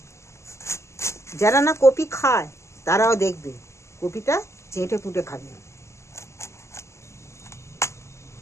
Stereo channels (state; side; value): late; right; 0.14 ms